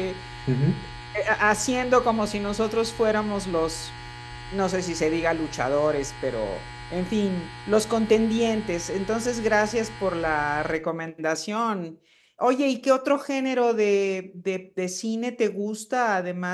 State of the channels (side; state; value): both; identical; correlation 1.00